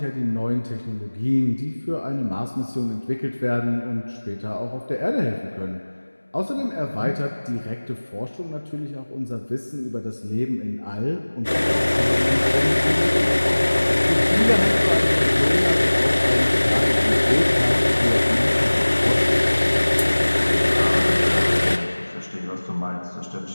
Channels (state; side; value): inverted; both; correlation -1.00